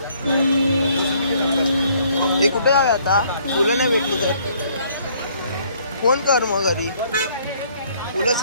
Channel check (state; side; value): inverted; both; correlation -0.63